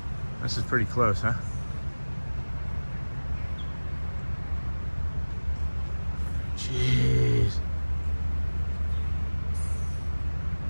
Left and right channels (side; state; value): both; inverted; correlation -1.00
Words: This is pretty close, huh? Jeez.